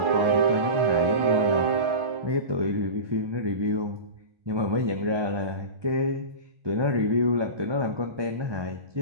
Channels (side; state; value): left; late; 1.2 ms